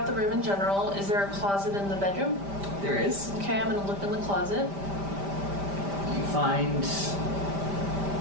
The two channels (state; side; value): late; left; 5.1 ms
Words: the room in general. Is there a closet in the bedroom? There is. Okay, I'm gonna look in the closet. You find